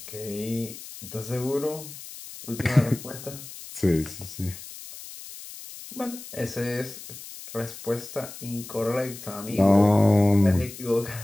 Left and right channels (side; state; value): left; noise; hiss, 14 dB below the sound